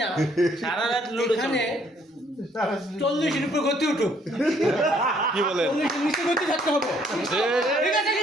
না সারা রাত এখানে 40-এর উপর গতি উঠুক। কি বলেন 40-এর নিচে গতি থাকতে হবে, ঠিক আছে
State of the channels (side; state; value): both; normal; correlation 0.65